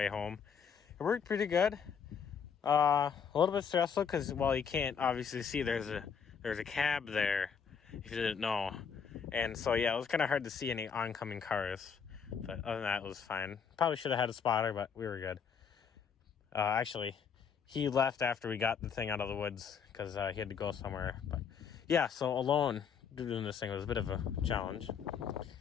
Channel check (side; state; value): right; quieter; 6.8 dB